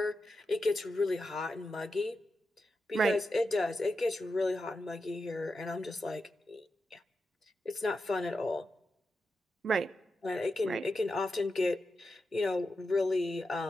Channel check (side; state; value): both; normal; correlation 0.88